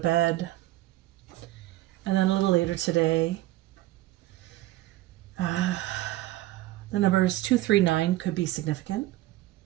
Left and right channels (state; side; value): quieter; left; 16.4 dB